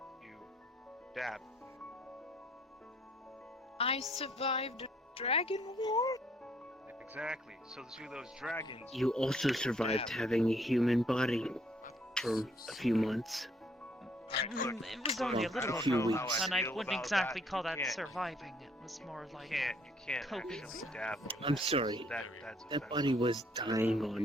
you dab. I survived a dragon war? Exactly. So to those dragons... You also survived having a human body for a few months. It was only a little few while, weeks. and I wouldn't about exactly that. call You that can't- surviving. It was more like You can't coping. actually dab on I'm that. sorry. That's That body was dying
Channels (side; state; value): both; normal; correlation 0.65